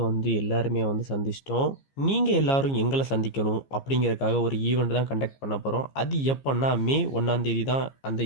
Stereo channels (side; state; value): right; late; 15 ms